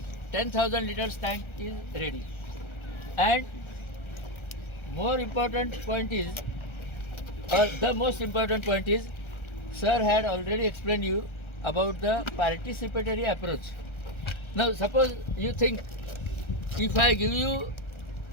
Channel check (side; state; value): right; late; 1.3 ms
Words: 10,000 liters tank is ready. And more important point is, or the most important point is, sir had already explained you about the participatory approach. Now suppose you think, if I give you